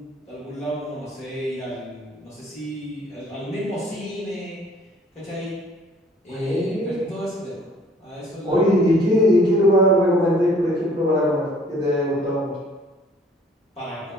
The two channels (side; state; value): both; normal; correlation 0.57